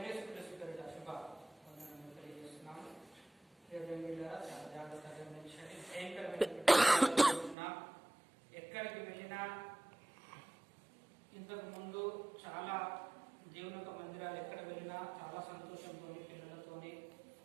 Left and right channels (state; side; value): drops out; left; at 7.6 s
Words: యేసుక్రీస్తు పేరిట శుభ వందనములు తెలియజేస్తున్నాము. చాలా జాగ్రత్తగా గమనించండి. భయంకరమైనటువంటి ఎక్కడికి వెళ్ళినా ఇంతకు ముందు చాలా దేవుని యొక్క మందిరాలు ఎక్కడ వెళ్ళినా చాలా సంతోషంతో పిల్లలతోని